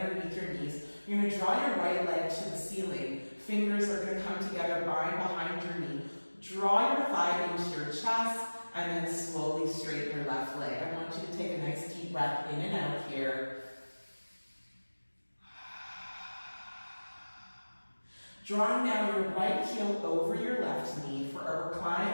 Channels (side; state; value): both; inverted; correlation -1.00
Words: your knees. You're going to draw your right leg to the ceiling. Fingers are going to come together, bind behind your knee. Draw your thigh into your chest, and then slowly straighten your left leg. I want you to take a nice deep breath in and out here. Drawing now your right heel over your left knee for a